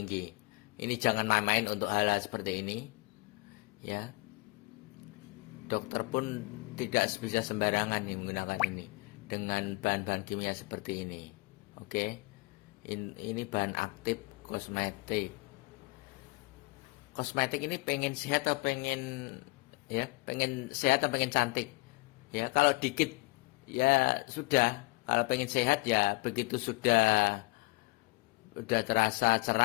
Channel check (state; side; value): quieter; right; 24.1 dB